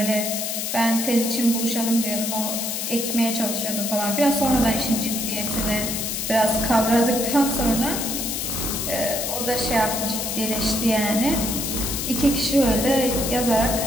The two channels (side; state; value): left; noise; hiss, 2 dB below the sound